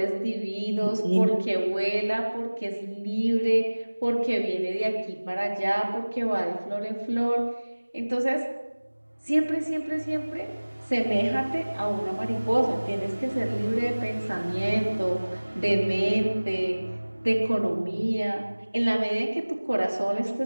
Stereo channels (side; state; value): both; inverted; correlation -1.00